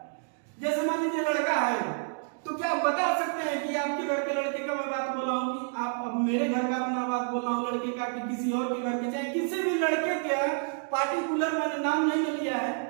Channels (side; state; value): left; silent; 59 dB below the other